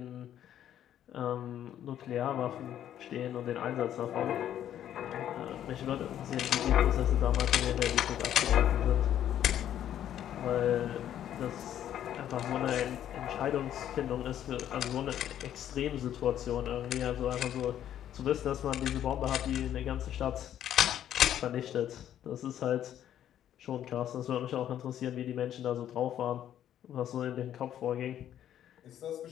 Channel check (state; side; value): quieter; right; 10.9 dB